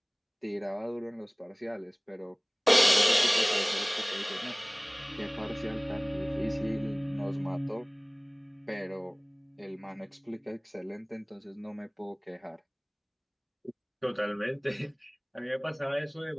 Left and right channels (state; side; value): identical; both; correlation 1.00